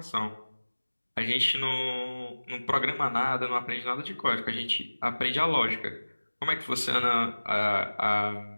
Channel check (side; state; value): both; inverted; correlation -1.00